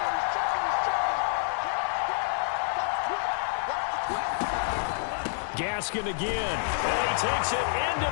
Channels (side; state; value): right; silent; digital silence